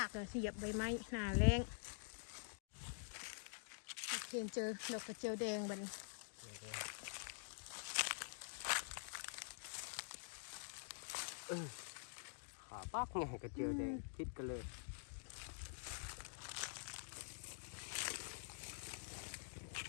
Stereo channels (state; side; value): silent; right; digital silence